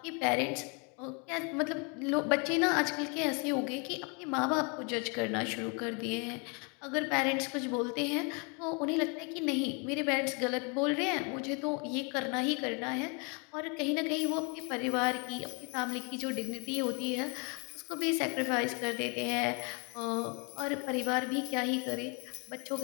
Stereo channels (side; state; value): right; quieter; 34.1 dB